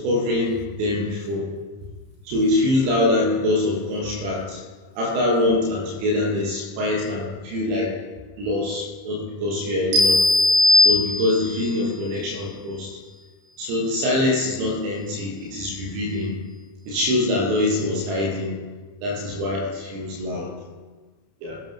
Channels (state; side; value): late; left; 30 ms